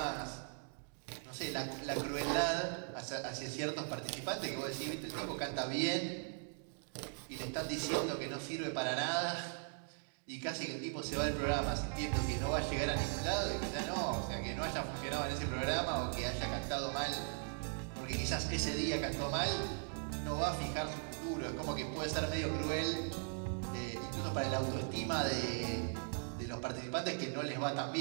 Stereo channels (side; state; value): left; silent; 52 dB below the other